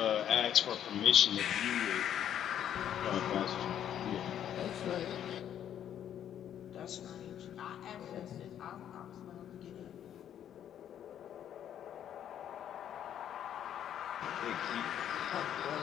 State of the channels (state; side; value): quieter; right; 10.0 dB